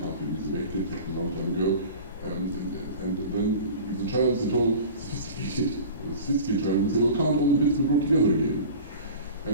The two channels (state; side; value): inverted; both; correlation -0.38